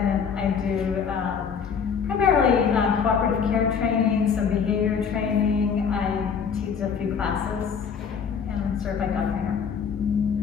I do primarily cooperative care training, some behavior training. I teach a few classes, and I'm a certified dog trainer.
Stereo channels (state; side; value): quieter; right; 6.6 dB